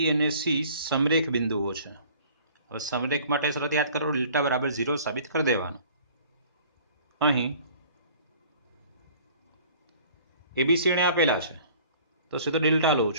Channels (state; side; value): inverted; both; correlation -0.51